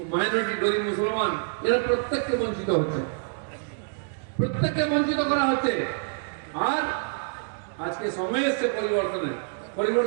minority, গরিব, মুসলমান, এরা প্রত্যেককে বঞ্চিত হচ্ছে, প্রত্যেককে বঞ্চিত করা হচ্ছে। আর আজকে সময় এসছে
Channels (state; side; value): silent; left; digital silence